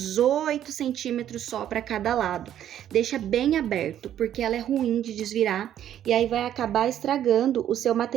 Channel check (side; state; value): left; quieter; 10.9 dB